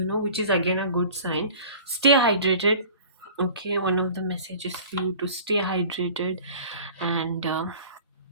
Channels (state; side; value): inverted; both; correlation -0.44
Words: which is again a good sign. Stay hydrated. Okay, one of the messages for you to stay hydrated. And